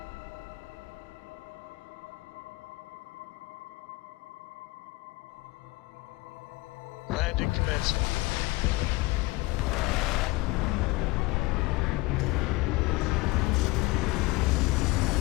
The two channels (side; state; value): right; quieter; 22.0 dB